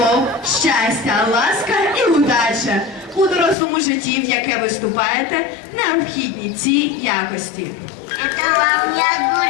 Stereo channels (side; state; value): right; drops out; at 3.6 s